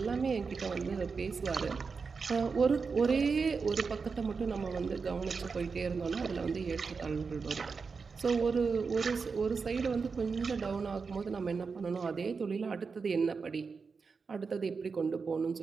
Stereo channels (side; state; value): left; quieter; 5.0 dB